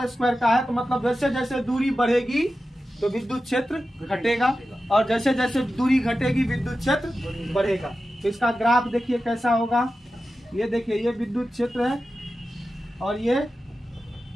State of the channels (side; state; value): both; normal; correlation 0.92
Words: स्क्वायर का है, तो मतलब जैसे जैसे दूरी बढ़ेगी तो विद्युत क्षेत्र घटेगा, और जैसे जैसे दूरी घटेगी विद्युत क्षेत्र बढ़ेगा। तो इसका ग्राफ देखिए कैसा होगा, ये देखिए ये विद्युत क्षेत्र है और ये